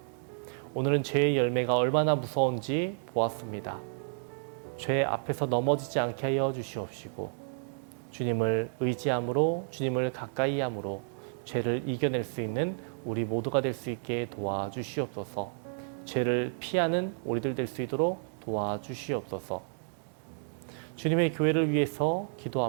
오늘은 죄의 열매가 얼마나 무서운지 보았습니다. 죄 앞에서 넘어지지 않게 하여 주시옵시고 주님을 의지함으로, 주님을 가까이 함으로 죄를 이겨낼 수 있는 우리 모두가 될 수 있게 도와주시옵소서. 죄를 피하는 우리들 될 수 있도록 도와주시옵소서. 주님의 교회를 위해서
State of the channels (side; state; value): left; silent; digital silence